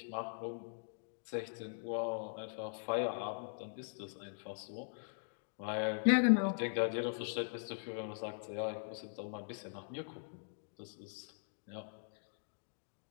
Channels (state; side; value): silent; right; digital silence